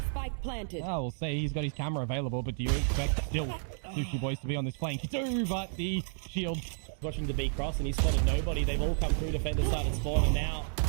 Spike planted. Oh, we'll see. He's got his camera available, but do you expect still Sushi Boys to be on this flank? You do, but the shield. Watching the B cross, and he's spotted nobody. They've all come through defender side and spawn, and now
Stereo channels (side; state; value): left; silent; digital silence